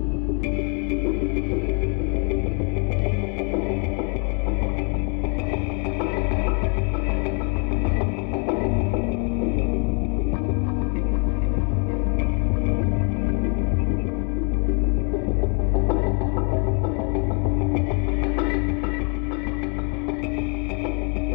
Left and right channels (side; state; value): right; quieter; 37.7 dB